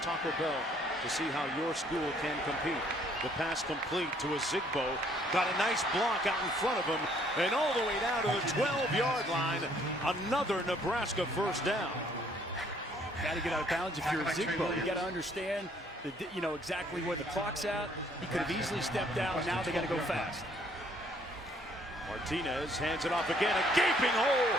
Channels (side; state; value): both; normal; correlation 0.63